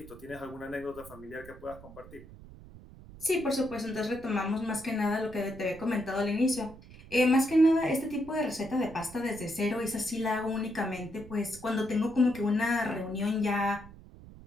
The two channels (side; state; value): right; noise; rumble, 18 dB below the sound